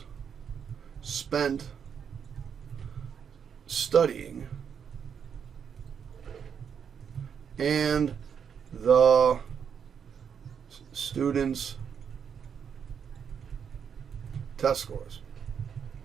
spent studying and the students' test scores.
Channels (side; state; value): left; quieter; 7.4 dB